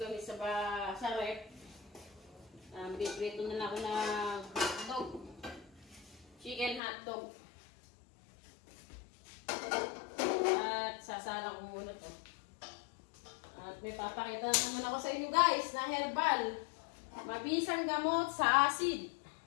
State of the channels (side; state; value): right; drops out; at 6.8 s